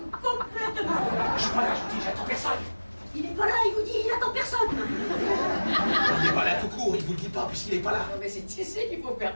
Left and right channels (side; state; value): both; inverted; correlation -1.00